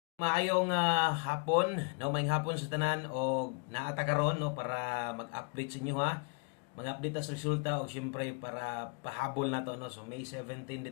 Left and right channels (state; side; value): quieter; right; 36.5 dB